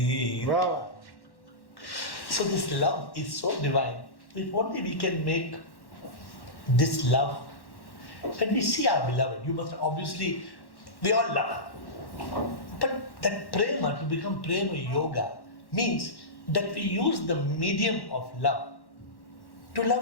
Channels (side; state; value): right; late; 1.1 ms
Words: Wow. So this love is so divine. If only we can make this love. When we see our beloved, you must obviously, we all love. But that prema, to become prema yoga, means that we use the medium of love to